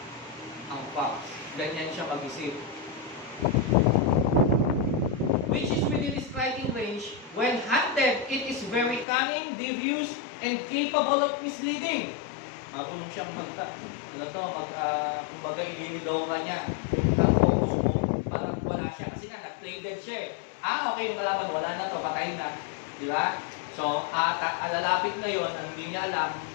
ang fox. Ganyan siya mag-isip. Which is within striking range. When hunted, it is very cunning, devious, and capable of misleading. Marunong siyang kumbaga ililigaw ka niya. Ang focus mo, parang wala siya. Kasi nga, nag-play dead siya eh. Okay, yung kalaban, wala na to, patay na. Di ba? So, alalapit ngayon, ang hindi niya alam,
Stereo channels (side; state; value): right; drops out; at 9.1 s